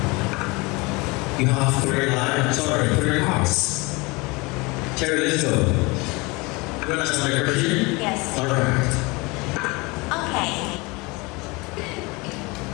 You have 3 hearts. Cherry, let's go. You want to ask my question? Yes. Alright. Okay.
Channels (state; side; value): quieter; right; 25.6 dB